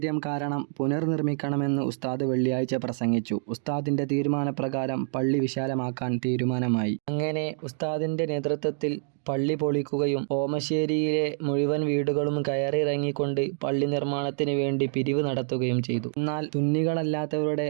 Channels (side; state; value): left; silent; digital silence